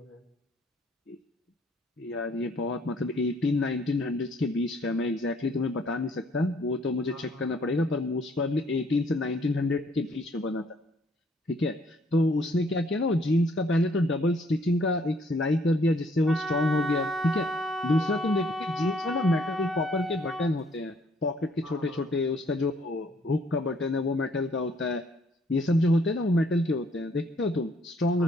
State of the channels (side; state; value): both; normal; correlation 0.64